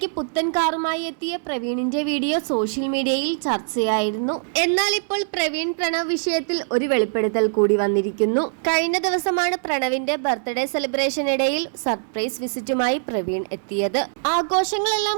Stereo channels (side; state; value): left; silent; digital silence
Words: പുത്തൻ കാറുമായി എത്തിയ പ്രവീണിന്റെ വീഡിയോ സോഷ്യൽ മീഡിയയിൽ ചർച്ചയായിരുന്നു. എന്നാൽ ഇപ്പോൾ പ്രവീൺ പ്രണവ് വിഷയത്തിൽ ഒരു വെളിപ്പെടുത്തൽ കൂടി വന്നിരിക്കുന്നു. കഴിഞ്ഞ ദിവസമാണ് പ്രണവിന്റെ ബർത്ത്ഡേ സെലിബ്രേഷനിടയിൽ സർപ്രൈസ് വിസിറ്റുമായി പ്രവീൺ എത്തിയത്.